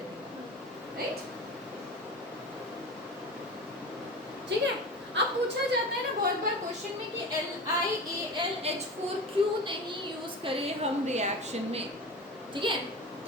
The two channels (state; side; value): normal; both; correlation 0.31